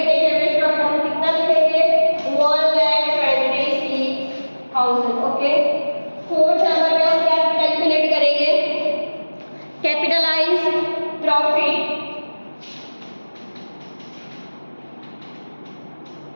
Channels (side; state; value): both; inverted; correlation -1.00